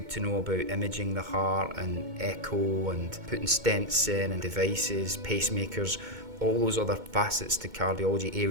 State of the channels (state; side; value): late; left; 2.2 ms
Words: to know about imaging the heart and echo and putting stents in and devices, pacemakers, all those other facets to cardiology,